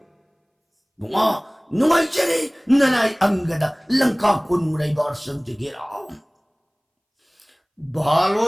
No, I Jerry, Nanai Angada, Lanka Kunmurai Barsam to get out.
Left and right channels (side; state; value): both; identical; correlation 1.00